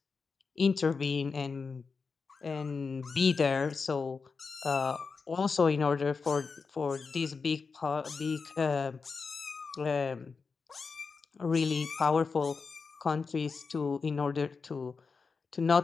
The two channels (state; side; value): quieter; right; 4.9 dB